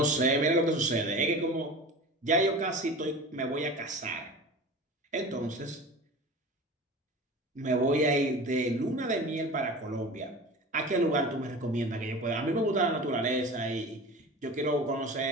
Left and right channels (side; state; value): both; normal; correlation 0.34